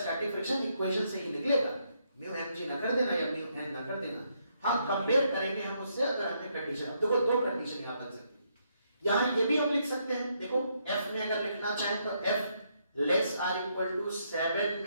फ्रिक्शन इक्वेशन से ही निकलेगा, म्यू mg ना कर देना या म्यू n ना कर देना। हाँ कंपेयर करेंगे हम उससे अगर हमने कंडीशन, देखो दो कंडीशन यहाँ बन सकती है, यहाँ ये भी हम लिख सकते हैं, देखो f में अगर लिखना चाहें तो f less r equal to 7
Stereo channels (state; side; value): inverted; both; correlation -0.75